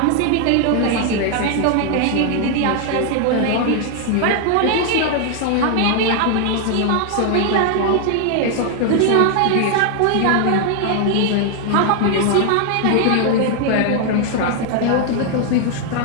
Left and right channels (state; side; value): different; both; correlation 0.00